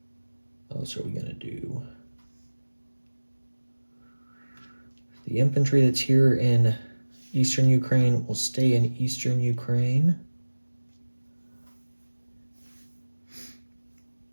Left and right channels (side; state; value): both; inverted; correlation -1.00